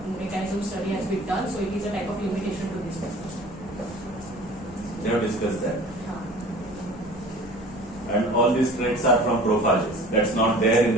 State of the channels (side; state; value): both; normal; correlation 0.44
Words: mechanism study has been done, so it is a type of limitation to this paper. They have discussed that. And all these traits are from prophages. That's not there in